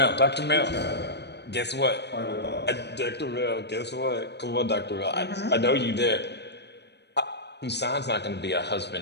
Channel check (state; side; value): late; right; 0.49 ms